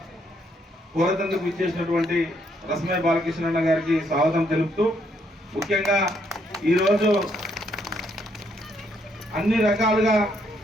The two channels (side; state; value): both; normal; correlation 0.72